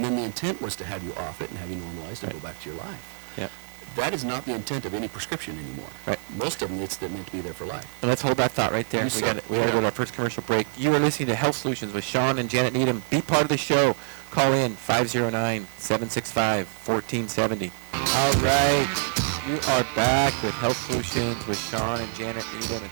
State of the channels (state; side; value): silent; left; digital silence